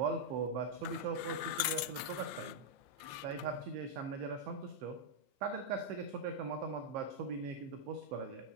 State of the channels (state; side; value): late; left; 15 ms